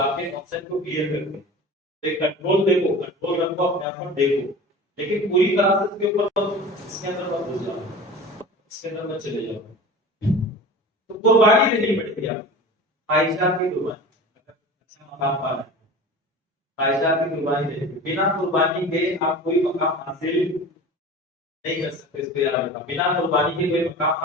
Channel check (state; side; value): normal; both; correlation 0.36